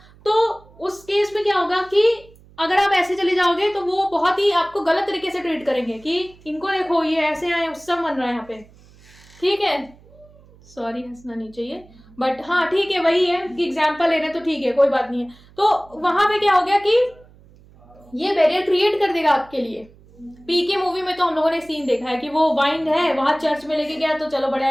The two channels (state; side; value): noise; right; hum, 26 dB below the sound